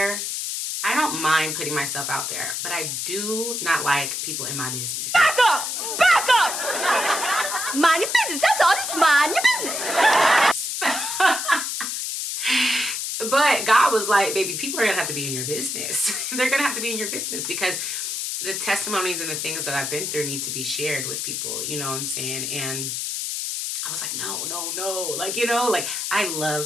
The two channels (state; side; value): noise; left; hiss, 3 dB below the sound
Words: I don't mind putting myself out there, but I do not like people in my business. Back up! Back up! Mind your business. That's all. Just mind your business. But God was like, baby, people are gonna have to be in your business. They're gonna have to be in your business because the testimonies and the things that I've been through need to be shared with people, you know what I'm saying? And I was like, no, no, no. Like, you know, like I love